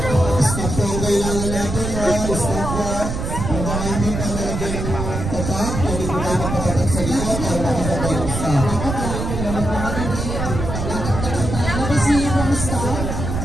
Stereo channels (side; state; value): right; noise; rumble, 4 dB below the sound